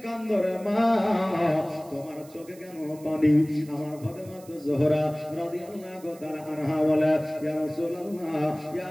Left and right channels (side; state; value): right; noise; hiss, 23 dB below the sound